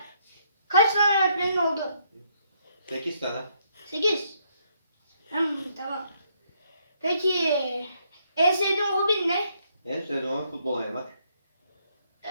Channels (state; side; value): inverted; both; correlation -0.72